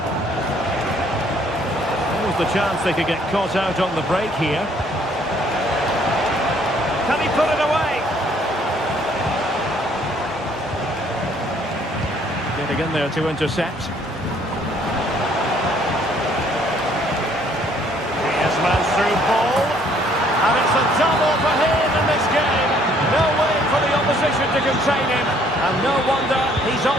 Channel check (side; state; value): both; normal; correlation 0.63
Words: There was the chance they could get caught out on the break here. Can he put it away? Getting in there to intercept. Griezmann's through ball. And it's a double for him in this game. No way for the opposition to contain him. And no wonder he's